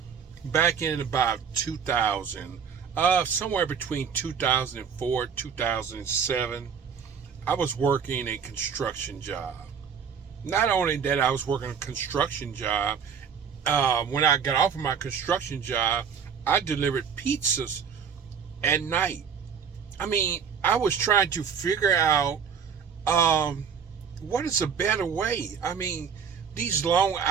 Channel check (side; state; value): left; quieter; 6.9 dB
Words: back in about 2000, somewhere between 2004 2007, I was working a construction job. Not only that, I was working a construction job. When I got off of my construction job, I delivered pizzas at night. I mean, I was trying to figure out what is a better way. I mean, these long